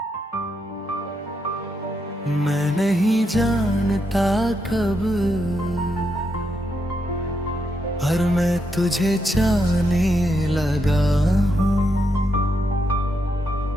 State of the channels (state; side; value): normal; both; correlation 0.81